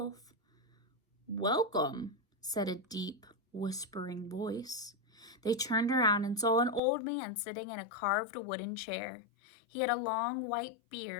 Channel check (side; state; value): right; drops out; at 6.8 s